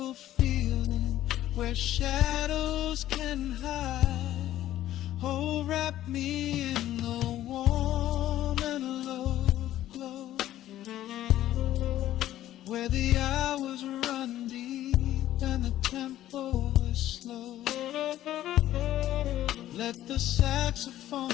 feeling where shadows can hide. Oh, wrap me in the warm and love glow, where the hours run deep and the tempo is slow. Let the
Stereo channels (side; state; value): right; quieter; 13.3 dB